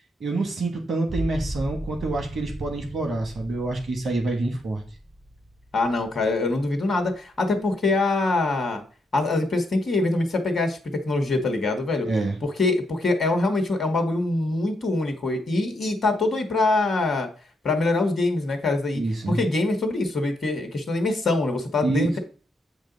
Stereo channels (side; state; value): both; normal; correlation 0.78